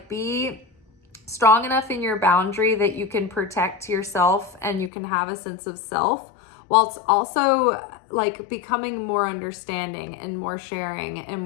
be strong enough in your boundary that you can protect yourself and you can have a sense of self, whilst also like becoming more understanding and more sharing and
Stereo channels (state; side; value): drops out; right; at 4.9 s